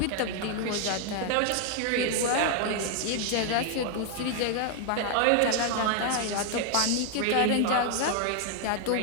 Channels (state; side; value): different; both; correlation 0.00